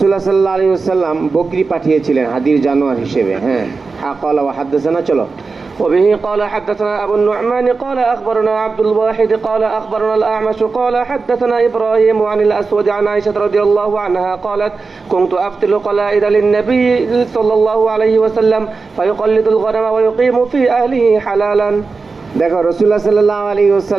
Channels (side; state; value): left; quieter; 4.3 dB